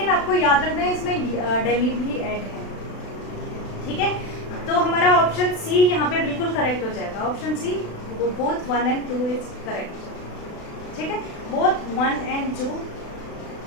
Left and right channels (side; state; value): right; late; 36 ms